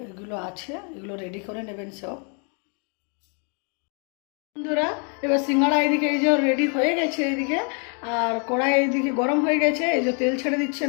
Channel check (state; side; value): quieter; right; 39.0 dB